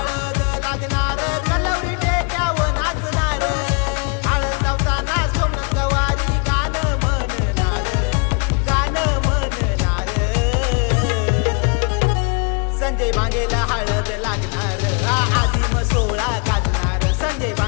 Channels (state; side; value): quieter; right; 36.2 dB